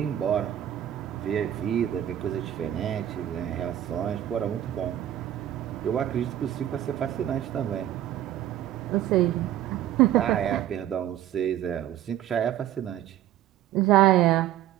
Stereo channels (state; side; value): quieter; left; 12.0 dB